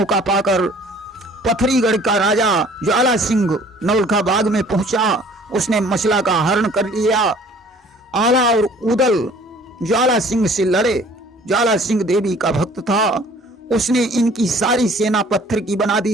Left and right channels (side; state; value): both; normal; correlation 0.53